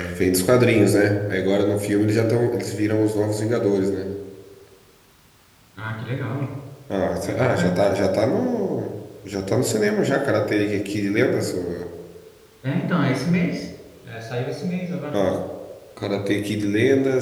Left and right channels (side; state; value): both; identical; correlation 1.00